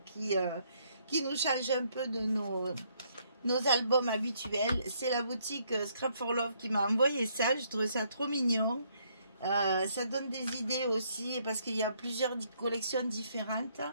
qui nous changent un peu de nos albums habituels. C'est la boutique Scrap for Love qui m'a envoyé ça. Je trouve ça trop mignon. Ça donne des idées aussi parce qu'il y a plusieurs collections différentes.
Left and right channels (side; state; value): both; inverted; correlation -0.70